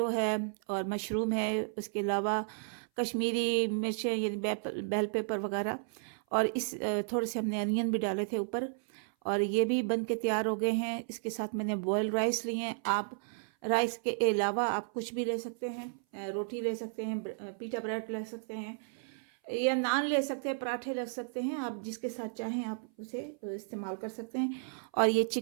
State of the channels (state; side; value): silent; left; 56 dB below the other